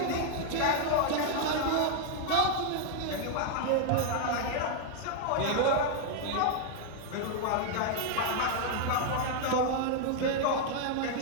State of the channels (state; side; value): different; both; correlation 0.00